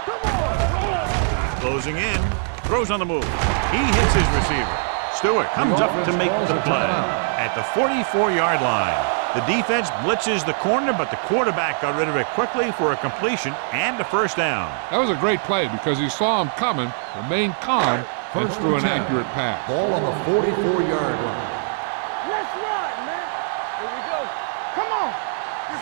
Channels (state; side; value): silent; left; digital silence